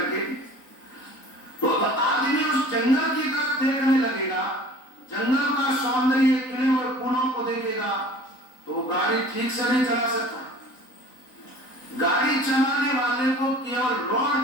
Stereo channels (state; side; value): late; right; 3.9 ms